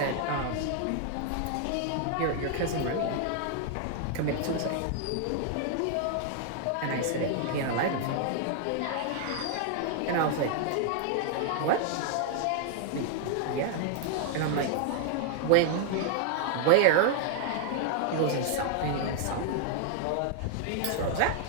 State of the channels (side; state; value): both; different; correlation 0.00